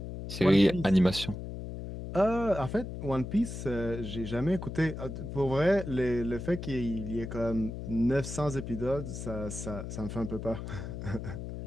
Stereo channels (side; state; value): left; noise; hum, 8 dB below the sound